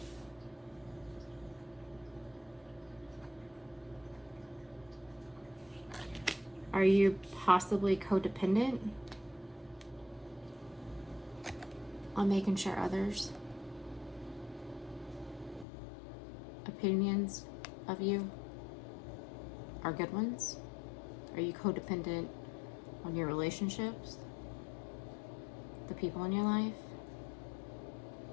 Are you possibly codependent on making sure others' opinions of you are good ones? Are you codependent on your relationships, the people in your life?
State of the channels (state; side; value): drops out; right; at 15.7 s